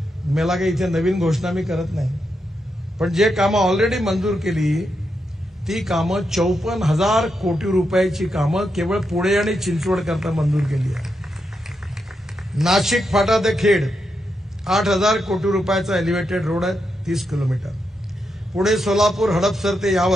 मला काही इथे नवीन घोषणा मी करत नाही, पण जे कामं ऑलरेडी मंजूर केली ती कामं 54,000 कोटी रुपयाची कामं केवळ पुणे आणि चिंचवड करता मंजूर केली आहे. नाशिक फाटा ते खेड 8,000 कोटी रुपयाचा एलिव्हेटेड रोड आहे 30 किलोमीटर. पुणे सोलापूर हडपसर ते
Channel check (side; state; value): both; normal; correlation 0.84